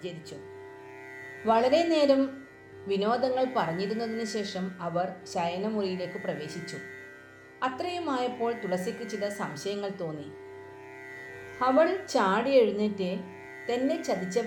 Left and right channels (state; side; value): identical; both; correlation 1.00